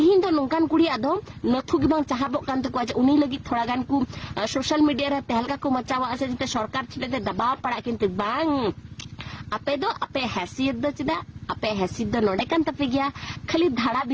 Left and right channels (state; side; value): identical; both; correlation 1.00